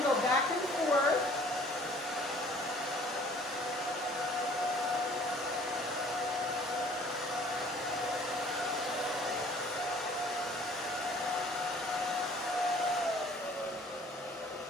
go back and forth.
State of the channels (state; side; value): normal; both; correlation 0.54